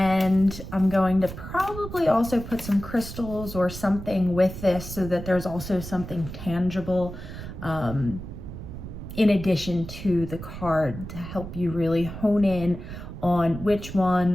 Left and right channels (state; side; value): noise; right; rumble, 10 dB below the sound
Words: I'm going to probably also put some crystals or something with this so that there's also something tangible in addition to the card to help you really hone in on which